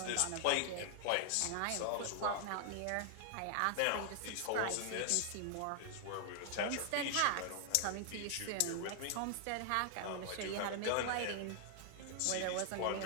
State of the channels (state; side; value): different; both; correlation 0.00